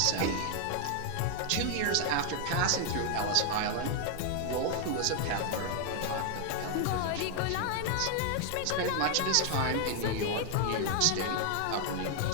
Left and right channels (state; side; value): different; both; correlation 0.00